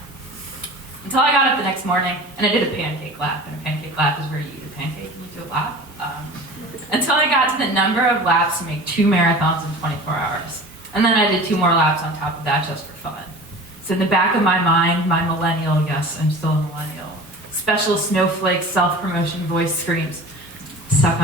Until I got up the next morning, and I did a pancake lap, and a pancake lap is where you eat a pancake and you do a lap. Until I got to the number of laps to make 2 marathons in 24 hours. And then I did 2 more laps on top of that just for fun. So in the back of my mind, my millennial, yes, I'm still a millennial, special snowflake self-promotion voice screams, suck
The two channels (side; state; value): both; normal; correlation 0.38